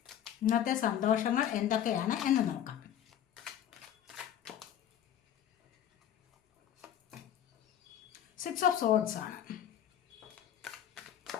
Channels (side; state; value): right; quieter; 10.3 dB